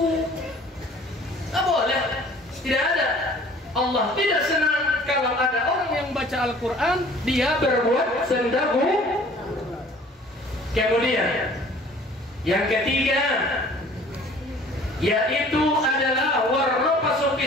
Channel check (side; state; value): both; normal; correlation 0.51